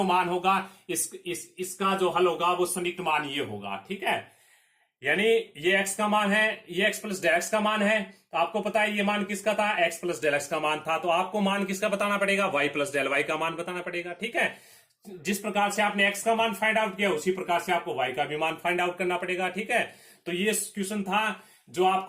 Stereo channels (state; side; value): identical; both; correlation 1.00